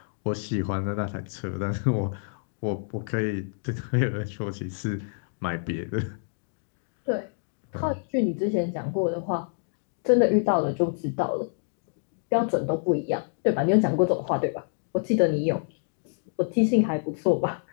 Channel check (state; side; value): silent; right; digital silence